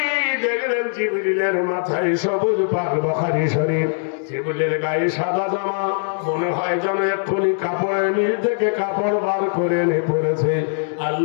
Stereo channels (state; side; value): silent; right; 62 dB below the other